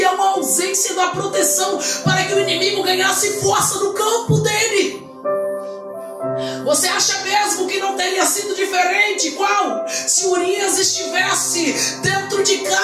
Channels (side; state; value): both; identical; correlation 1.00